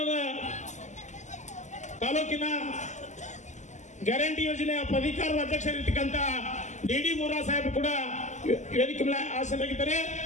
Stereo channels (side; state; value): right; late; 0.34 ms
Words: ತಾಲೂಕಿನ ಗ್ಯಾರಂಟಿ ಯೋಜನೆಯ ಪ್ರಾಧಿಕಾರದ ಅಧ್ಯಕ್ಷರಾಗಿರ್ತಕ್ಕಂಥ DD ಮೂರಾವ್ ಸಾಹೇಬರು ಕೂಡ ವೇದಿಕೆ ಮೇಲೆ ಆಸೀನರಾಗಿದ್ದಾರೆ.